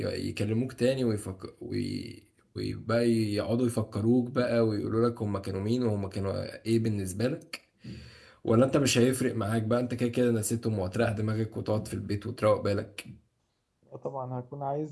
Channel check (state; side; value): identical; both; correlation 1.00